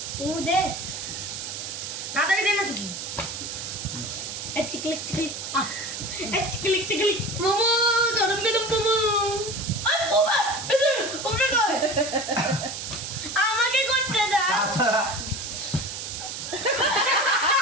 দে তাড়াতাড়ি দে না চুকি চিকলিক চিকলিক চিকলিক চিকলিক মোমো গরম গরম মোমো আমাকে করতে দাও আচ্ছা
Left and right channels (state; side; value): noise; right; hiss, 6 dB below the sound